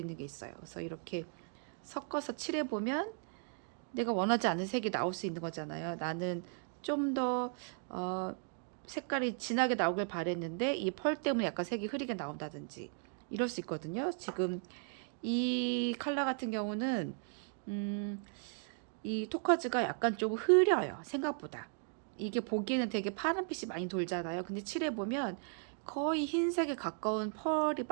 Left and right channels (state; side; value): silent; left; 53 dB below the other